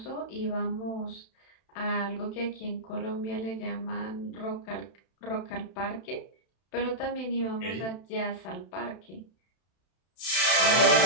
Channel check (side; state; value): right; late; 31 ms